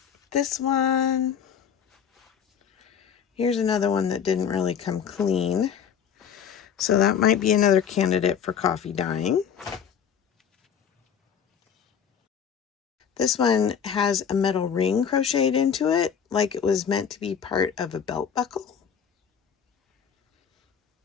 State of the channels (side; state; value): right; quieter; 7.7 dB